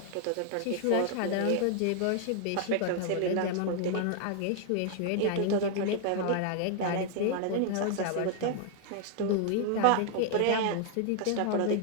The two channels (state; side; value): different; both; correlation 0.00